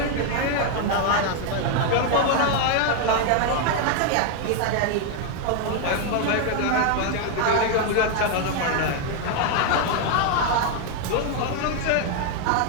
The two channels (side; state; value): both; different; correlation 0.00